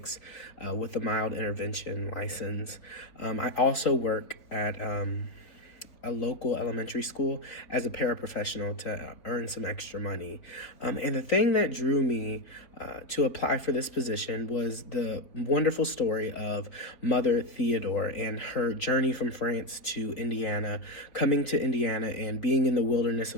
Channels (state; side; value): late; right; 3.7 ms